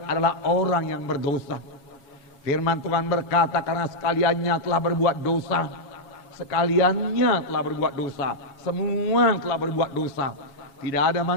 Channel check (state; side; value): late; right; 7.3 ms